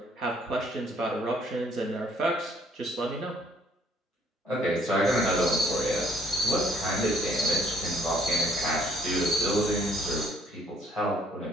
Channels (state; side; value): normal; both; correlation 0.62